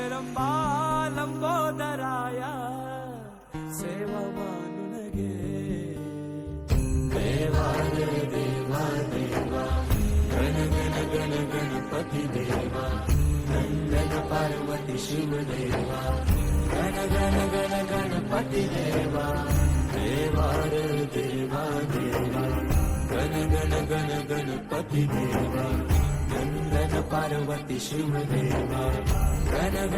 रंबा लंबोदराया सेवा मानून घे देवा रे देवा देवा गण गण गण गणपती देवा नंदन पार्वती शिव देवा गण गण गण गणपती देवा देवा रे देवा देवा गण गण गण गणपती देवा नंदन पार्वती शिव देवा गण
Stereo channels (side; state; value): both; identical; correlation 1.00